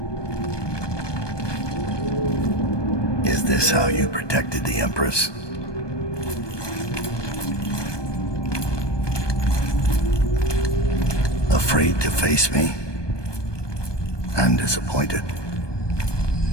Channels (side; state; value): right; late; 1.2 ms